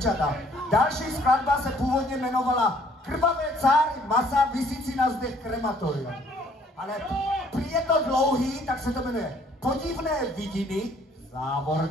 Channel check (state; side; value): normal; both; correlation 0.61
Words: další skladba se původně jmenovala Krvavé cáry masa visící na zdech krematoria. Ale prý je to dlouhý, tak se to jmenuje Podivné vidiny, v